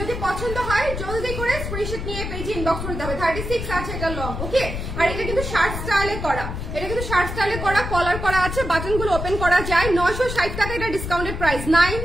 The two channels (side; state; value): left; noise; rumble, 5 dB below the sound